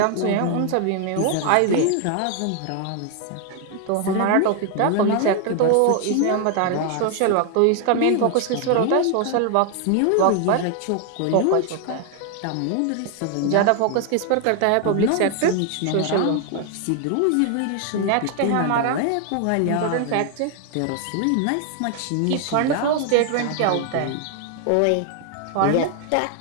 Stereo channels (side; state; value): both; different; correlation 0.00